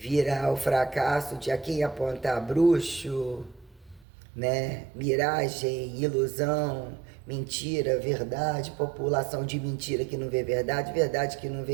o fracasso de a quem apontar bruxo, né? Miragem, ilusão, mentira, verdade, população de mentira que não vê verdade, verdade que não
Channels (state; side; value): drops out; left; at 4.0 s